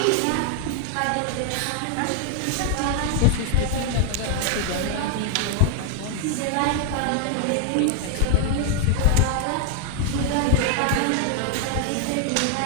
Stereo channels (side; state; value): both; different; correlation 0.00